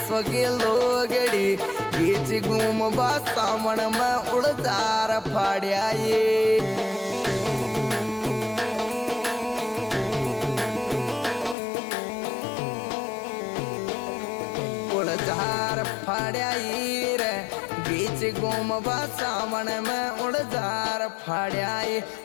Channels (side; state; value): right; drops out; at 11.6 s